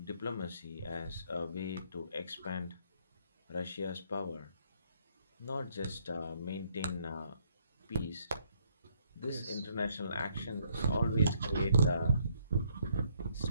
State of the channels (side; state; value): both; inverted; correlation -0.69